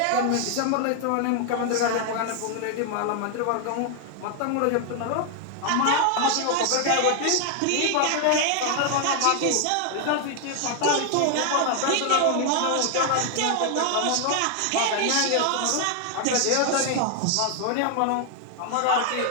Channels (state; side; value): different; both; correlation 0.00